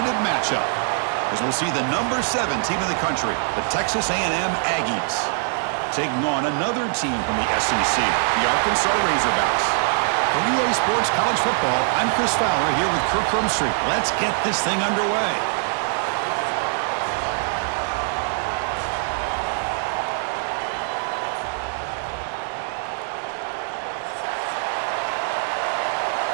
matchup, as we'll see the number 7 team in the country, the Texas A&M Aggies, taking on another team from the SEC, the Arkansas Razorbacks. For EA Sports College Football, I'm Chris Fowler here with Kirk Crumstreet. Let's get this thing underway.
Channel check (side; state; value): left; silent; 63 dB below the other